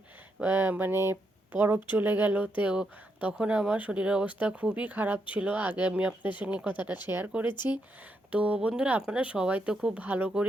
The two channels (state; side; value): normal; both; correlation 0.80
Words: মানে পরব চলে গেল। তো তখন আমার শরীরের অবস্থা খুবই খারাপ ছিল। আগে আমি আপনাদের সঙ্গে কথাটা শেয়ার করেছি। তো বন্ধুরা, আপনারা সবাই তো খুব ভালো